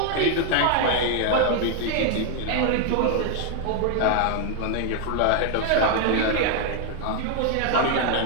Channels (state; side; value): different; both; correlation 0.00